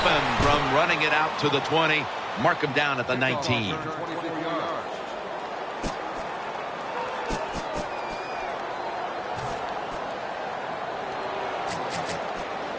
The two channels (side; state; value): both; identical; correlation 1.00